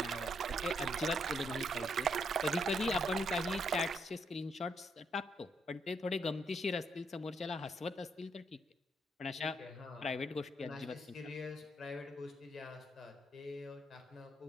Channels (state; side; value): normal; both; correlation 0.75